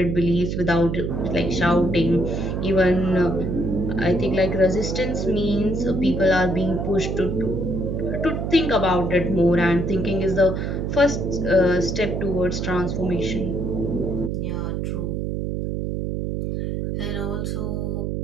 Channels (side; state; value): right; noise; hum, 2 dB below the sound